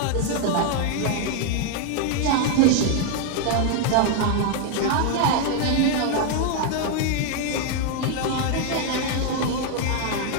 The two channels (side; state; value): both; different; correlation 0.00